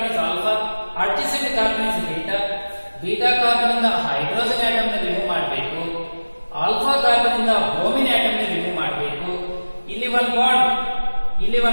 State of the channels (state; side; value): inverted; both; correlation -1.00